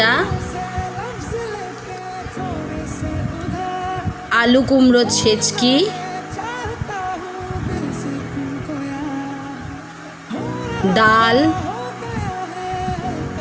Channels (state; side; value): identical; both; correlation 1.00